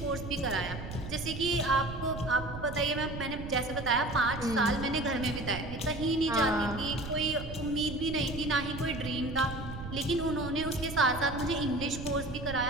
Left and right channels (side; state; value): right; noise; rumble, 9 dB below the sound